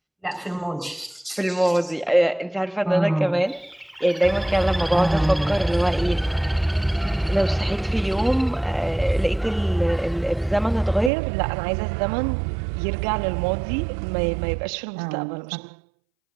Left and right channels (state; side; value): drops out; left; at 11.1 s